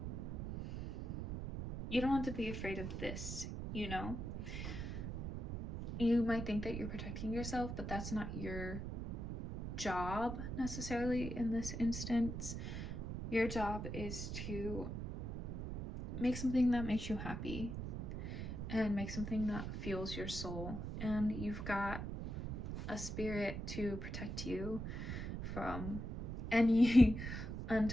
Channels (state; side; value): noise; right; rumble, 5 dB below the sound